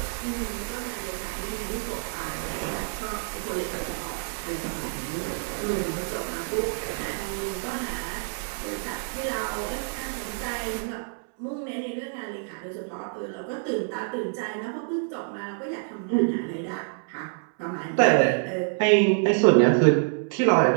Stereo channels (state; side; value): silent; left; 60 dB below the other